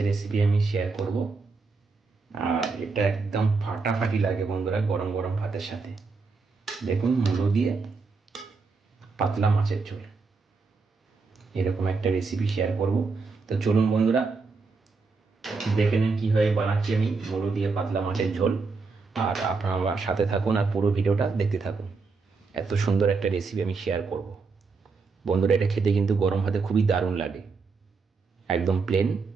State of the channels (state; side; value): quieter; left; 4.4 dB